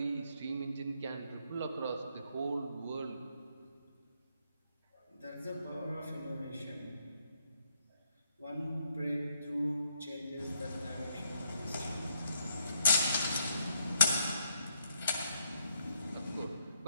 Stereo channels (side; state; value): both; inverted; correlation -0.72